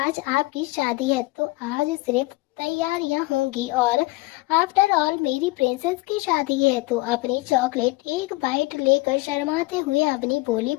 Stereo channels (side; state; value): right; quieter; 21.6 dB